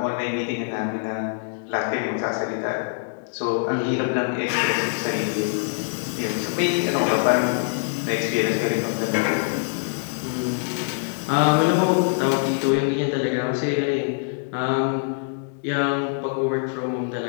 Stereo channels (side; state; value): right; silent; digital silence